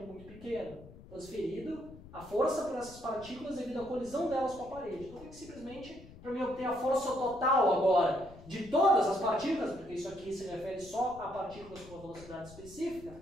muito pequeno. Transferido a força para essas partículas devido à colisão delas com a parede. Então eu tenho que simplesmente, para mim obter a força total agora de todas as partículas, porque isso aqui se refere só a partículas com uma velocidade específica,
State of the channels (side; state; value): left; noise; rumble, 18 dB below the sound